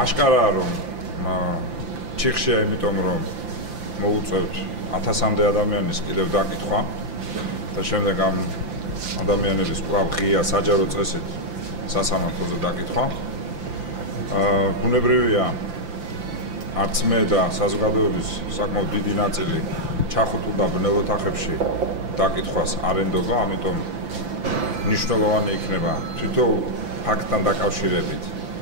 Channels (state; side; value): late; left; 5.9 ms